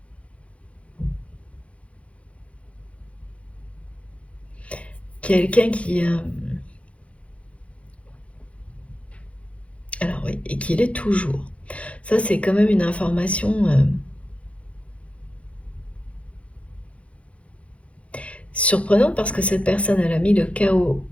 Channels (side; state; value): right; late; 0.063 ms